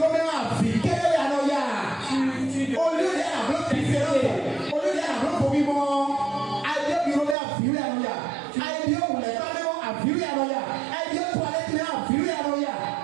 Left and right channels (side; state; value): left; drops out; at 7.4 s